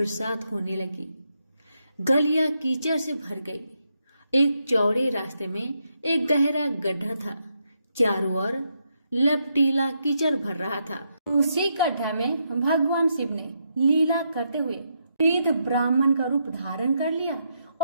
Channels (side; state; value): both; inverted; correlation -0.80